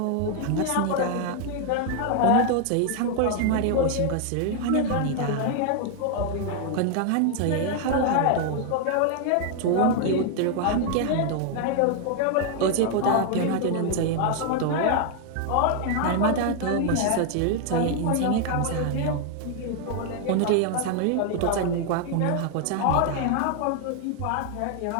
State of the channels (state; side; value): different; both; correlation 0.00